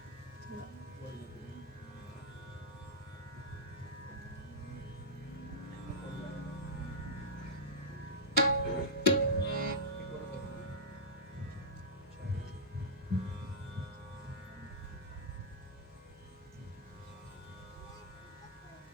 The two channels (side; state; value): both; normal; correlation -0.10